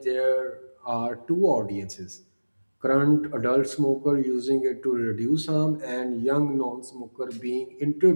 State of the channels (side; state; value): both; inverted; correlation -1.00